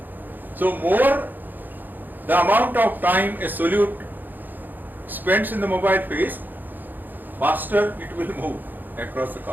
So more the amount of time a solute spends in the mobile phase, faster it will move across the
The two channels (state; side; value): late; left; 0.087 ms